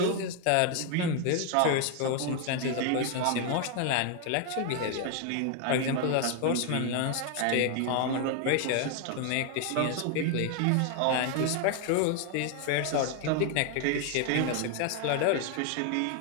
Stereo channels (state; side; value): different; both; correlation 0.00